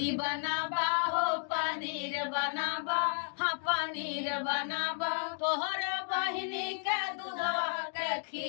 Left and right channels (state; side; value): silent; right; digital silence